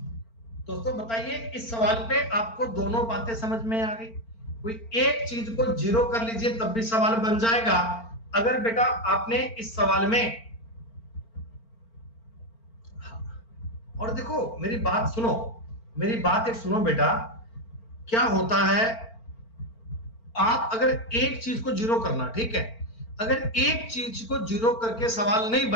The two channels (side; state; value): right; late; 4.4 ms